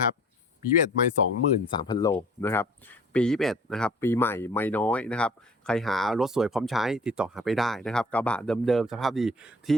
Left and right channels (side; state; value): both; normal; correlation 0.50